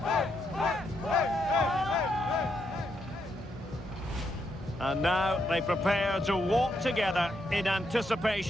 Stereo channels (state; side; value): normal; both; correlation 0.79